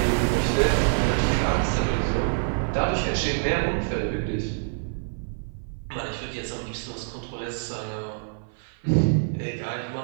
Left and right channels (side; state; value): left; silent; 56 dB below the other